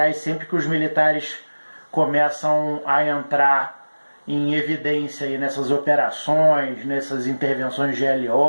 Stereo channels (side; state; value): both; inverted; correlation -1.00